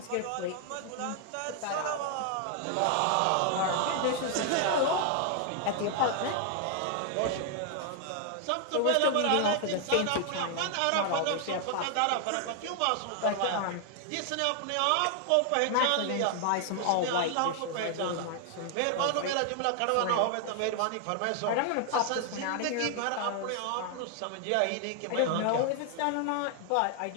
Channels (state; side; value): different; both; correlation 0.00